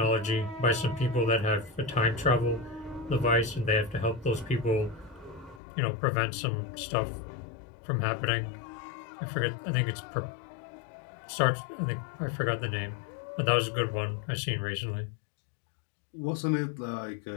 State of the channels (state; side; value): drops out; right; at 5.6 s